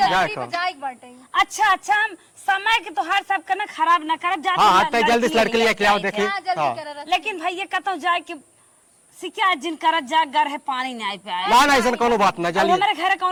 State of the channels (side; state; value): both; identical; correlation 1.00